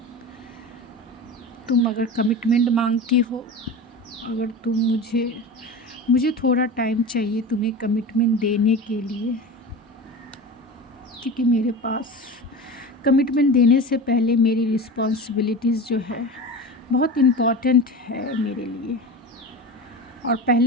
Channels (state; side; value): normal; both; correlation 0.29